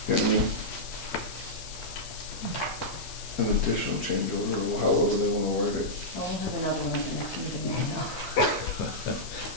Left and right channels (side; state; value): left; noise; hiss, 12 dB below the sound